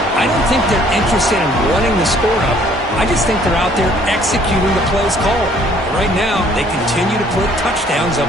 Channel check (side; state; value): both; normal; correlation 0.60